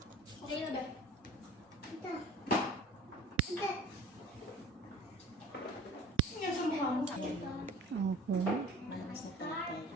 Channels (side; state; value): both; normal; correlation 0.44